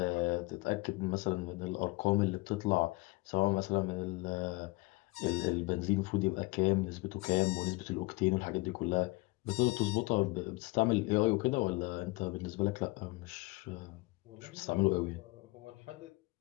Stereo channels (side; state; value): right; quieter; 23.3 dB